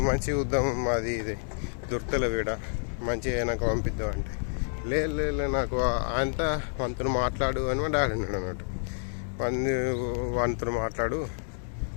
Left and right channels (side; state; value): right; silent; 58 dB below the other